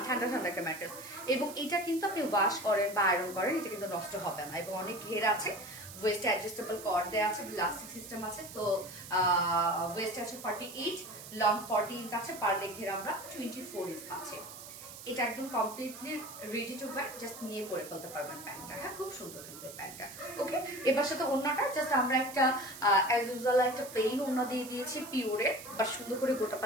ঠান্ডা ঠান্ডা একটা ম্যাটেরিয়ালস, এবং এটা কিন্তু আপনি ওয়াশ করেন বা আয়রন করেন এটা কিন্তু নষ্ট হবে না, এবং অনেক ঘের আছে, ওয়েস্ট অ্যাডজাস্টেবল কর্ড দেওয়া আছে, ইলাস্টিক সিস্টেম আছে, তো ওয়েস্ট আছে 48, লং 40 ইঞ্চ আছে, পার লেগ ঘের আমরা 24 ইঞ্চ পাচ্ছি। এটা একদম completely ready to wire, just নিয়ে পরে ফেলতে পারবেন প্যান্টটা, হ্যাঁ খুব সুন্দর কিন্তু এই প্যান্টটা। ওকে এবার সাথে ওড়নাটা জাস্ট আমরা একটা অ্যাজ ইউজুয়াল একটা প্লেন ওড়না দিয়ে দিয়েছি পিওরের, বা সুন্দর করে গোটা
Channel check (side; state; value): right; noise; hiss, 14 dB below the sound